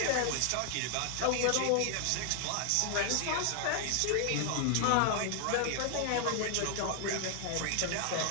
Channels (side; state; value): both; different; correlation 0.00